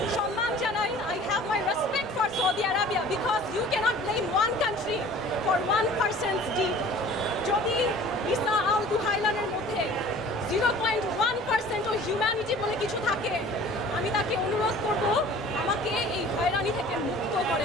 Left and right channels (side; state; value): both; normal; correlation 0.47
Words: সম্মান জানাই। I have my respect for Saudi Arabia because you cannot blame one country for one person's deed. যদি ঈসা আল দুহাইলানের মধ্যে 0.1% ও হিউম্যানিটি বলে কিছু থাকে, আমি তাকে অনুরোধ করব আমাকে এই হয়রানি থেকে